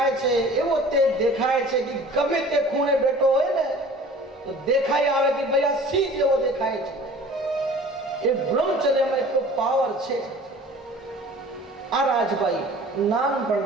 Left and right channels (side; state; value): both; normal; correlation 0.46